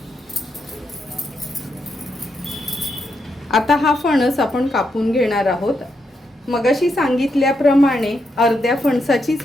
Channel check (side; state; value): both; normal; correlation 0.82